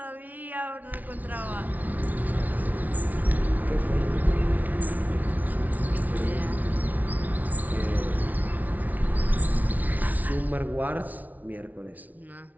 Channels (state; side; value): late; left; 0.076 ms